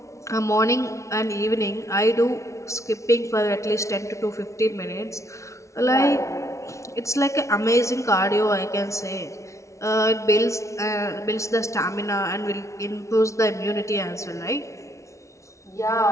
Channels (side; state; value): right; late; 0.14 ms